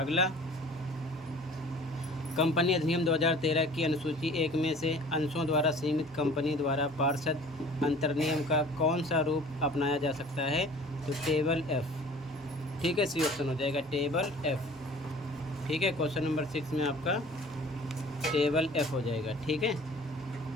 कंपनी अधिनियम 2013 की अनुसूची 1 में से अंशों द्वारा सीमित कंपनी द्वारा पार्षद अंतर्नियम का कौन सा रूप अपनाया जा सकता है? तो टेबल एफ। ठीक है, सी ऑप्शन हो जाएगा, टेबल एफ। ठीक है, क्वेश्चन नंबर 6 में आपका टेबल एफ हो जाएगा। ठीक है,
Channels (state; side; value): normal; both; correlation 0.47